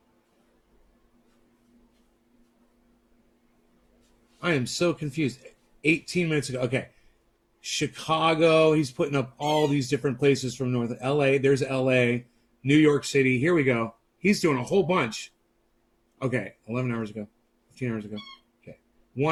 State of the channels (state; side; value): identical; both; correlation 1.00